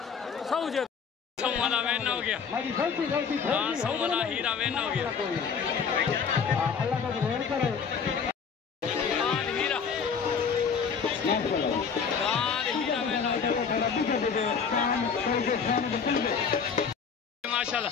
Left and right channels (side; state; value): right; quieter; 6.2 dB